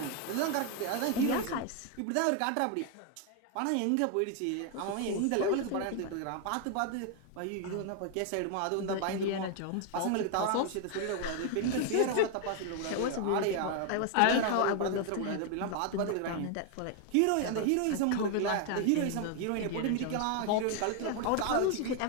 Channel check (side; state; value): both; different; correlation 0.00